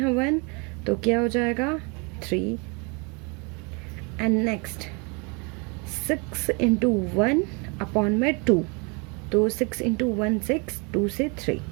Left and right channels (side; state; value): left; quieter; 31.9 dB